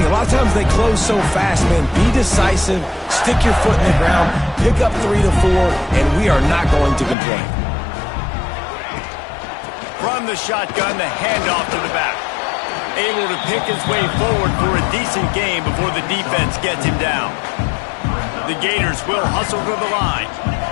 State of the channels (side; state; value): right; drops out; at 7.2 s